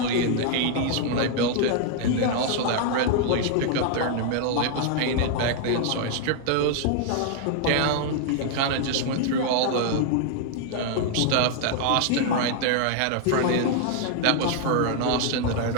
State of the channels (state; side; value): different; both; correlation 0.00